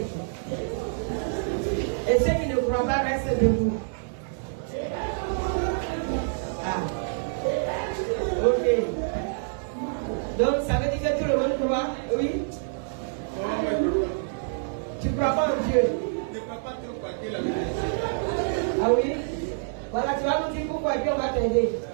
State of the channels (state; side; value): silent; left; digital silence